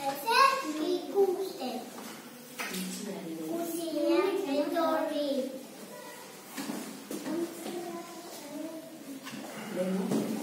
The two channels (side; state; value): both; identical; correlation 1.00